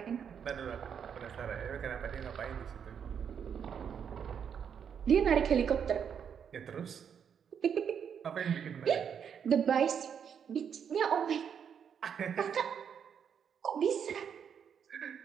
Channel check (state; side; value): quieter; left; 7.7 dB